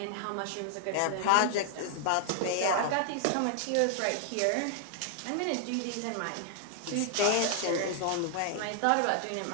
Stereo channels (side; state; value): both; different; correlation 0.00